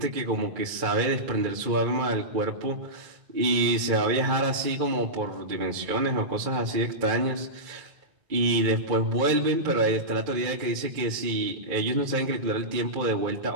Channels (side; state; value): left; late; 2.3 ms